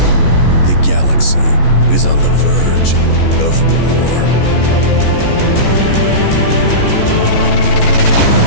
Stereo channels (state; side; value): late; right; 14 ms